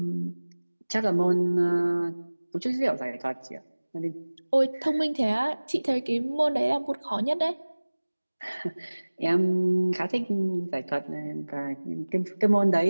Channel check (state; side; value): inverted; both; correlation -1.00